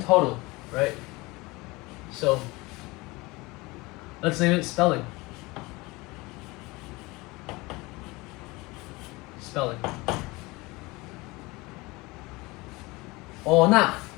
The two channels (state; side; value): quieter; right; 23.1 dB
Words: right? So let's name it spelling. Spelling. Ona.